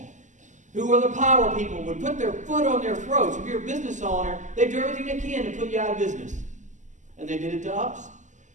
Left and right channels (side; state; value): left; late; 0.35 ms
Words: who were the power people, would put their foot on their throats. If you're a business owner, they do everything they can to put you out of business. And they did it to us.